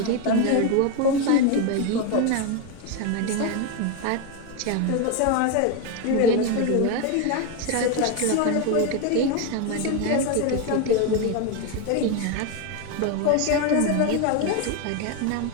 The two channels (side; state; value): both; different; correlation 0.02